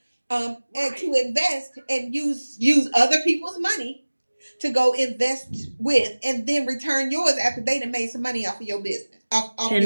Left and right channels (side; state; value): both; inverted; correlation -1.00